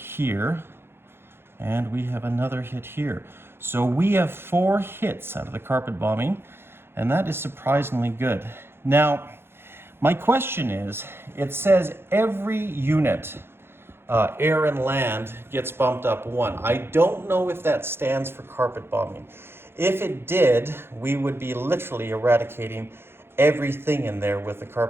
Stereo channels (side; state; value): left; late; 0.11 ms